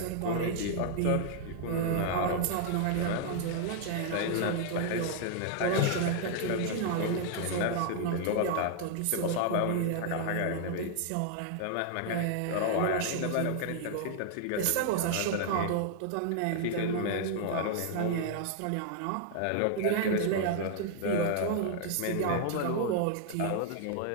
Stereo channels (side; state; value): both; different; correlation 0.00